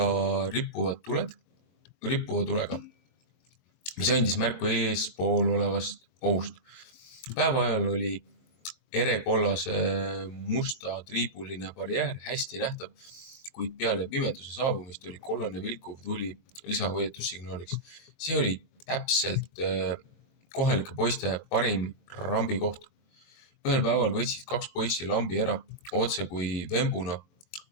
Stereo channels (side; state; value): right; late; 22 ms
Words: rippuva tulega, mis andis märku eespool olevast ohust. Päeva ajal oli erekollase musta triibuline barjäär hästi nähtav, kuid peale pimeduse saabumist oli kollane vilkuv tuli lisahoiatussignaaliks. See oli täpselt kohalike poiste parim rambikoht. Ühel päeval võtsid 2 poissi lambi ära, otse kui vembuna,